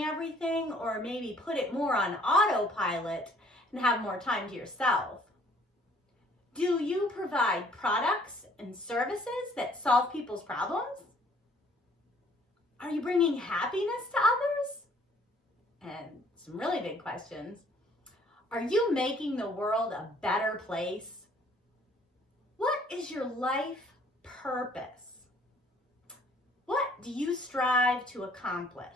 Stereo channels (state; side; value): normal; both; correlation 0.59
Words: everything, or maybe put it more on autopilot and have more time to yourself? Do you provide products and services that solve people's problems? Are you bringing happiness to others? And some really big questions. Are you making the world a better place? What is your life purpose? What do you strive to